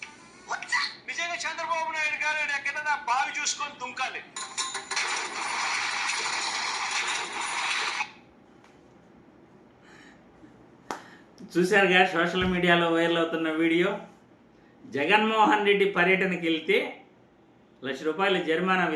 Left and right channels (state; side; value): identical; both; correlation 1.00